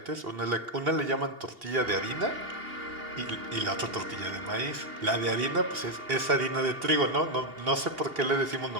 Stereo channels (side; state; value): left; late; 2.8 ms